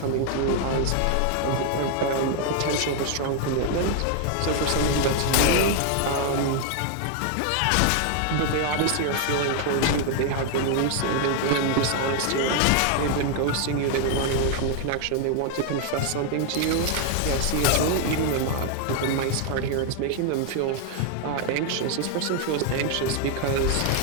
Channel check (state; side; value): different; both; correlation 0.00